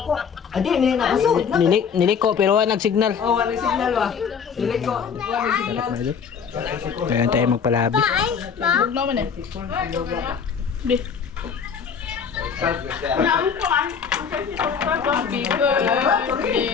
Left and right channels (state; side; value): quieter; right; 6.6 dB